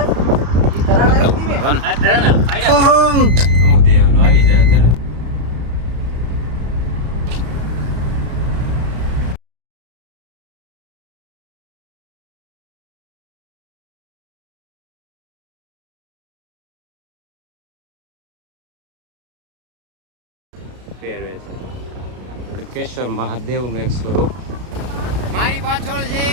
તો હું દેવનો આવી જાય અત્યારે પહેરવે છે કેશર મહાદેવનું એક સ્વરૂપ મારી પાછળ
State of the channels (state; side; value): late; left; 33 ms